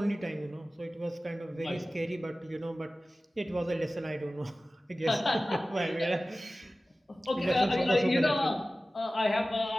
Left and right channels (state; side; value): normal; both; correlation 0.96